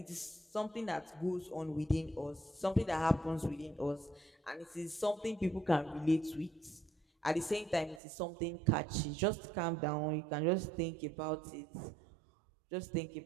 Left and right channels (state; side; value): drops out; left; at 8.0 s